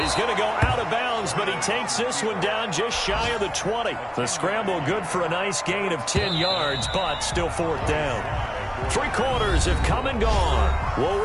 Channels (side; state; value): both; identical; correlation 1.00